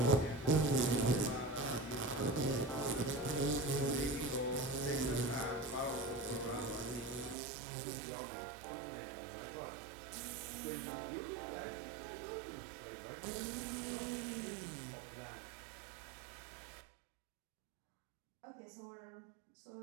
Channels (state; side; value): drops out; left; at 7.4 s